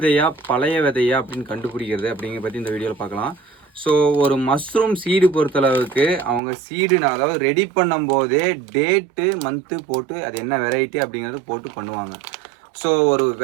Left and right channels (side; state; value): left; drops out; at 6.4 s